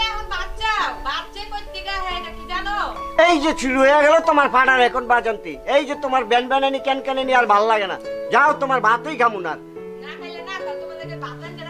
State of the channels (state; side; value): identical; both; correlation 1.00